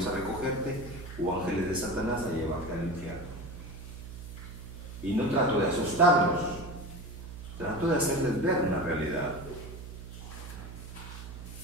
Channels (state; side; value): noise; right; hum, 11 dB below the sound